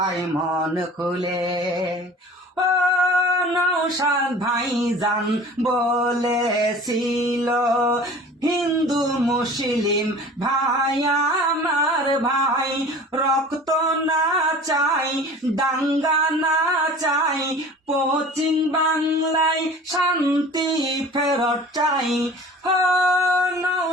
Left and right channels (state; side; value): normal; both; correlation 0.43